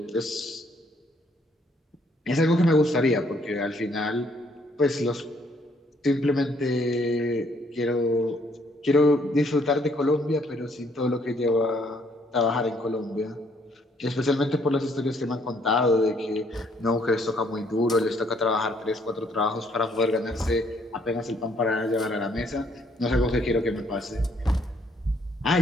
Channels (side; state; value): both; normal; correlation 0.67